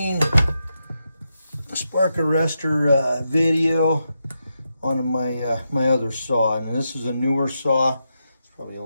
spark arrestor video on my other saw, and this is a newer saw. It's probably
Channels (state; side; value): inverted; both; correlation -0.86